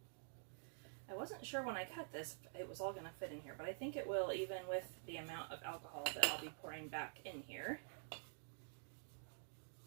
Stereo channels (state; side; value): silent; left; digital silence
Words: I wasn't sure when I cut this it was all going to fit in here, but I think it will, even with the amount of alcohol that I'll be pouring back in here.